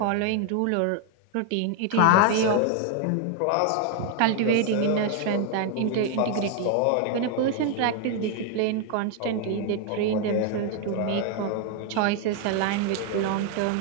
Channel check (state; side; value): different; both; correlation 0.00